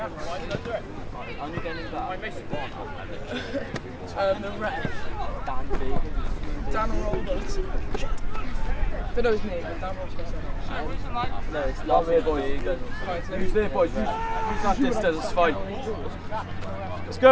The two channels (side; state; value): both; identical; correlation 1.00